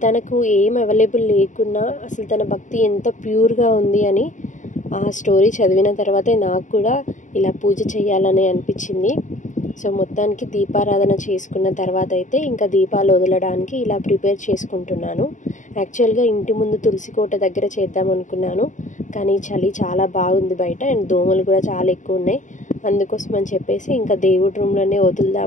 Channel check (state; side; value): late; right; 0.36 ms